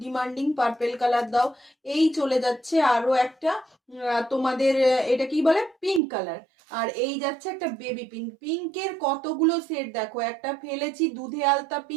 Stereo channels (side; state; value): left; drops out; at 6.0 s